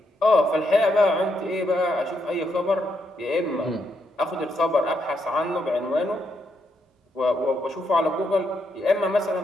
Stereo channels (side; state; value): both; normal; correlation 0.79